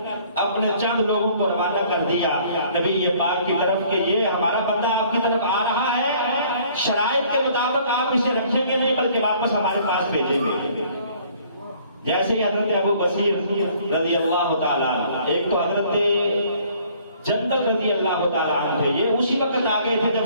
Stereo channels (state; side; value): inverted; both; correlation -0.58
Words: اپنے چند لوگوں کو روانہ کر دیا نبی پاک کی طرف کہ یہ ہمارا بندہ آپ کی طرف آ رہا ہے، شرائط کے مطابق آپ اسے رکھیں گے نہیں بلکہ واپس ہمارے پاس بھیجیں گے. جیسے ہی حضرت ابو بصیر رضی اللہ تعالیٰ عنہ، ایک تو حضرت جندل رضی اللہ تعالیٰ عنہ تھے، یہ اسی وقت آ گئے تھے جب